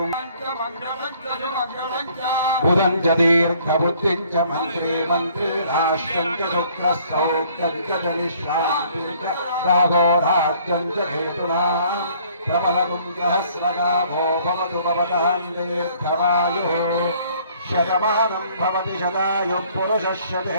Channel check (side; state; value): both; inverted; correlation -0.59